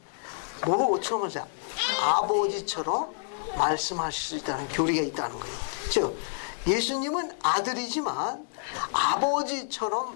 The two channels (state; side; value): silent; right; digital silence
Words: 뭐처럼 하세요? 아버지처럼 말씀하실 수 있다는 교리가 있다는 거예요. 즉 예수님은 아들이지만